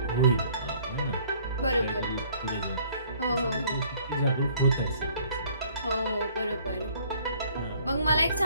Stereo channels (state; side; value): inverted; both; correlation -0.58